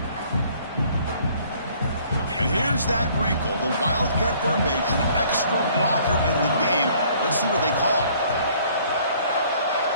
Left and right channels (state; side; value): inverted; both; correlation -0.58